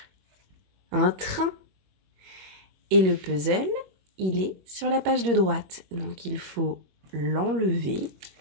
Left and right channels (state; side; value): late; left; 21 ms